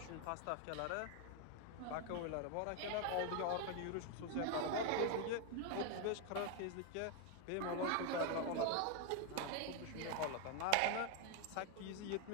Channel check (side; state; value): both; different; correlation 0.01